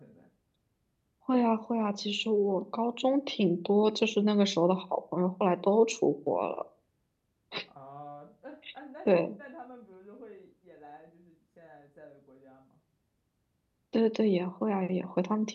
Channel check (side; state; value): both; identical; correlation 1.00